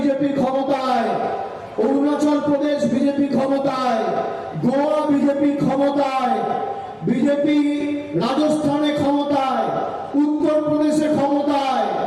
ক্ষমতায়, অরুণাচল প্রদেশ বিজেপি ক্ষমতায়, গোয়া বিজেপি ক্ষমতায়, বিজেপি রাজস্থানে ক্ষমতায়, উত্তরপ্রদেশে ক্ষমতায়,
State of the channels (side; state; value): both; identical; correlation 1.00